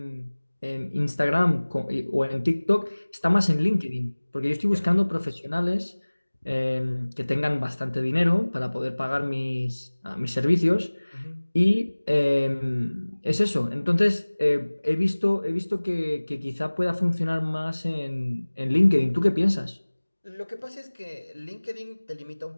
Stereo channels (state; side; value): inverted; both; correlation -1.00